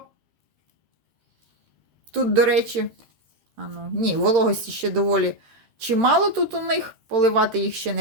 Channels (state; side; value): late; left; 13 ms